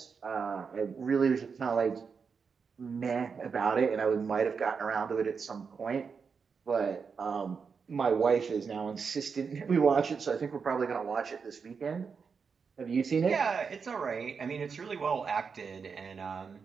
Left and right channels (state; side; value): quieter; left; 5.7 dB